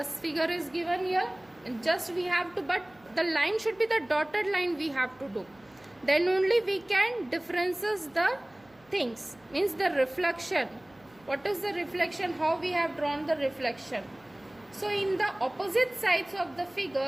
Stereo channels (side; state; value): right; noise; hum, 30 dB below the sound